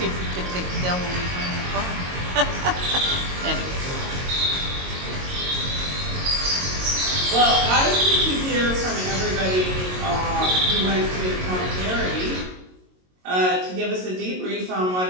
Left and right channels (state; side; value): late; left; 22 ms